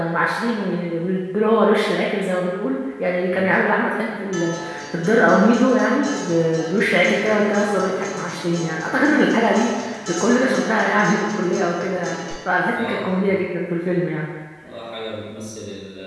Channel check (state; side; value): identical; both; correlation 1.00